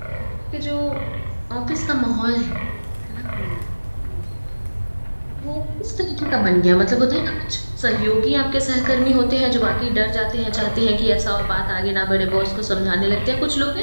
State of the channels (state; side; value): inverted; both; correlation -1.00